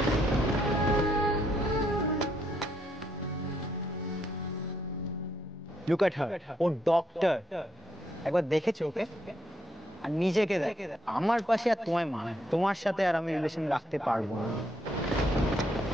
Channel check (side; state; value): both; normal; correlation 0.75